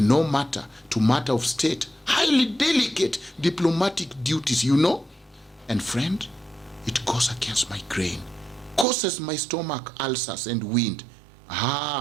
matter to matter of state, highly delicate diplomatic duties, you know. And friend, it goes against my grain, causes my stomach ulcers and wind.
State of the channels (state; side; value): drops out; left; at 8.8 s